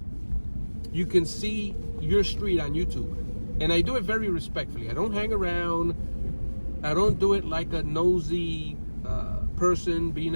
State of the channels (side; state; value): both; inverted; correlation -1.00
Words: you can see your street on YouTube. And I do it very respectfully. I don't hang around. I don't do it like a nosy person being